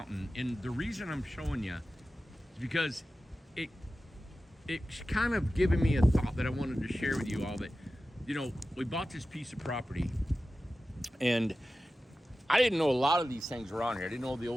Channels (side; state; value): both; normal; correlation 0.94